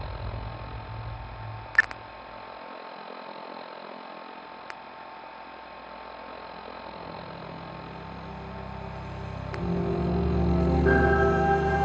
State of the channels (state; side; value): identical; both; correlation 1.00